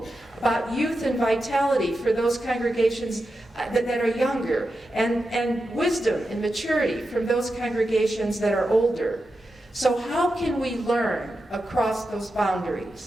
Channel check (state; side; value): normal; both; correlation 0.89